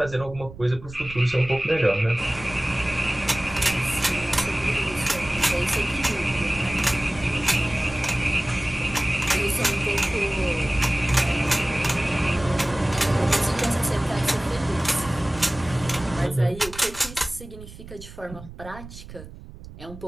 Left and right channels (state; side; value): noise; right; rumble, 15 dB below the sound